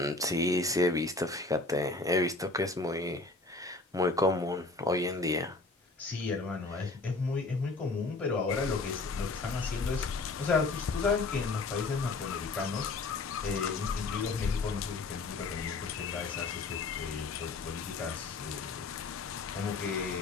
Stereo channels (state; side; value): quieter; right; 3.5 dB